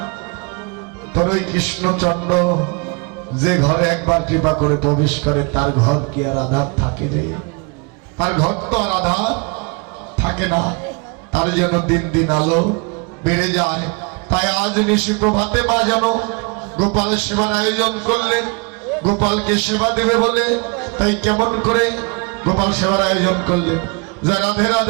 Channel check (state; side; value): quieter; left; 31.8 dB